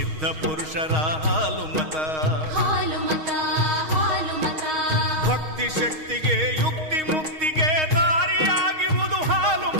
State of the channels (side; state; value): left; late; 6.4 ms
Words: ಪುರುಷರ ಹಾಲು ಮತ. ಭಕ್ತಿ ಶಕ್ತಿಗೆ ಯುಕ್ತಿ ಮುಕ್ತಿಗೆ ದಾರಿಯಾಗಿರುವುದು ಹಾಲು